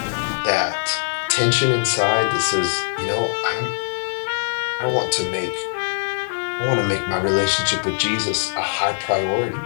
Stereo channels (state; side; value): silent; right; digital silence